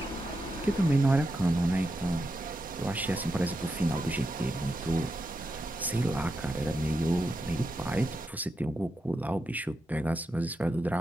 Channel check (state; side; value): normal; both; correlation 0.87